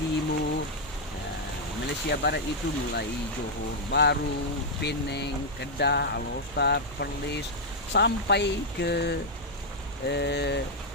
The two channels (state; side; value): normal; both; correlation -0.03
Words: Malaysia Barat itu mulai Johor Bahru, Penang, Kedah, Alor, Perlis, sampai ke